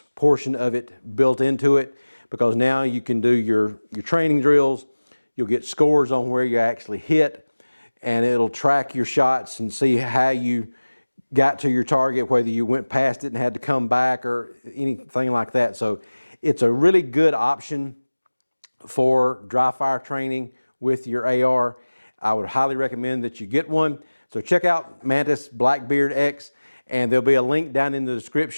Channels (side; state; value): both; inverted; correlation -1.00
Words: portion of it built into it, because now you can do your training drills, you'll get scores on where you actually hit, and it'll track your shots and see how you got to your target, whether you went past it and had to come back or anything like that. So it's a really good option for dry fire training with your AR. I would highly recommend that you get one. So check out Mantis Blackbeard X, and there'll be a link down in the